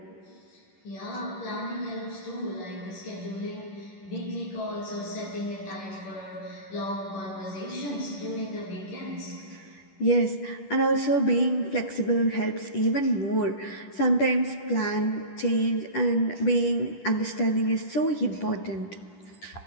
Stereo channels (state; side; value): late; right; 10 ms